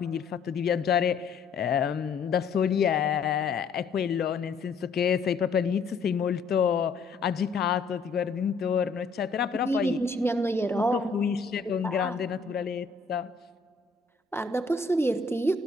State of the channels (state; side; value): quieter; right; 4.7 dB